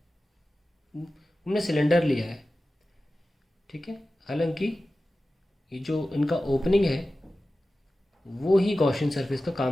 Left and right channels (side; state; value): both; normal; correlation 0.95